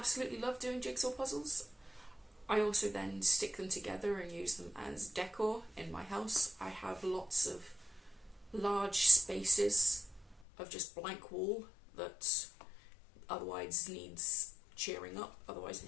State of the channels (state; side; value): drops out; right; at 10.5 s